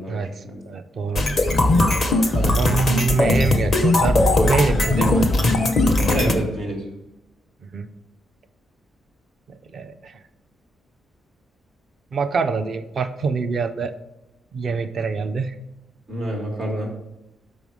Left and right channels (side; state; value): both; normal; correlation 0.80